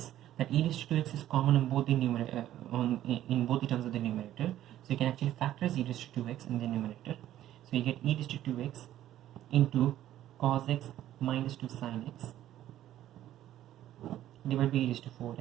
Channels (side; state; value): left; quieter; 12.8 dB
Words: that e raised to 2x is common on both the numerator, in both the terms of the numerator, so you can actually factorize e raised to 2x in the numerator. So you get e raised to 2x into cos x minus 2 sin x divided by e raised to